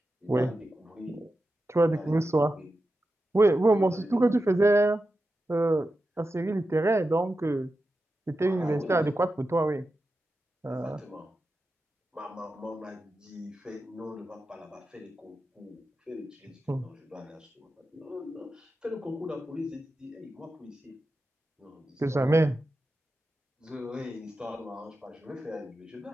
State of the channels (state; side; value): normal; both; correlation 0.91